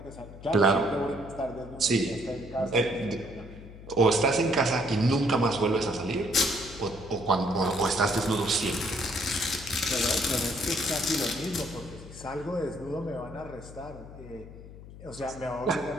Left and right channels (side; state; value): left; noise; hum, 16 dB below the sound